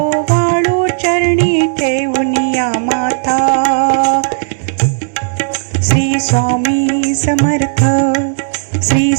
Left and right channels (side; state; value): left; silent; digital silence